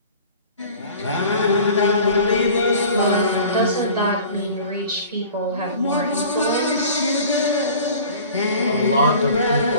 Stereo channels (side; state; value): both; inverted; correlation -0.44